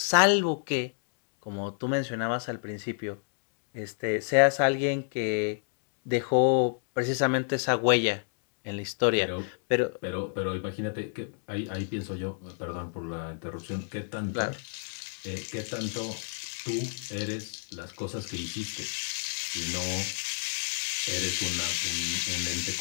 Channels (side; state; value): right; silent; digital silence